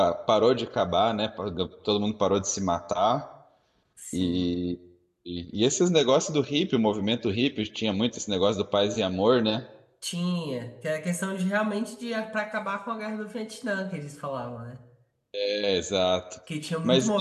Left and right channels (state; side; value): identical; both; correlation 1.00